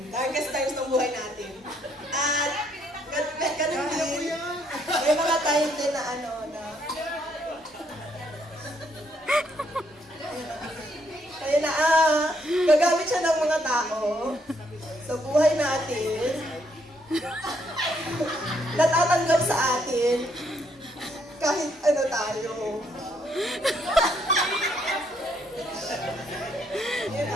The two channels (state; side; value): normal; both; correlation 0.72